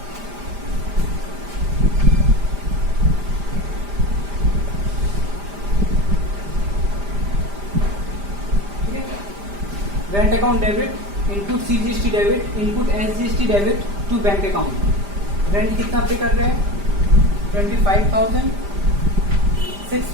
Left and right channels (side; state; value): left; late; 5.0 ms